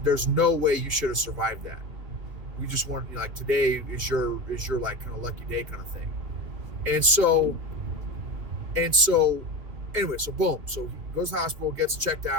no way you should have survived that. We just want today is your kind of lucky day kind of thing." And so anyway, so boom. So he goes to the hospital, gets checked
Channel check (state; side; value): late; left; 3.4 ms